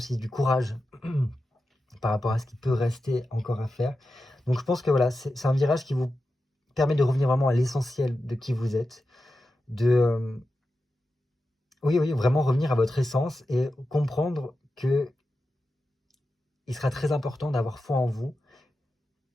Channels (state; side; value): normal; both; correlation 0.91